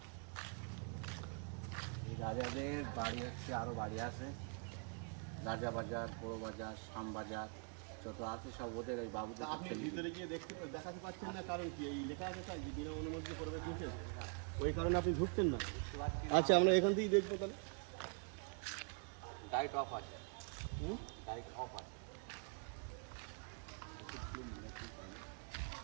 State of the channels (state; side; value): quieter; left; 39.3 dB